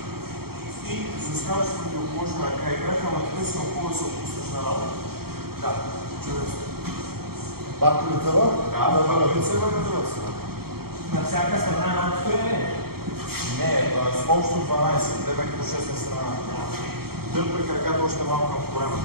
и заставаш противоположна ръка и крака, ама така си много да се отпуснеш на работа. Да, чудесно. Пак лицева? Да, пак лицева на другата страна. На всяка страна на отстояние? Не, с общо 12, тебе като 6 на страна. Дърпай краката още малко към корема.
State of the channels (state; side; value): late; left; 0.95 ms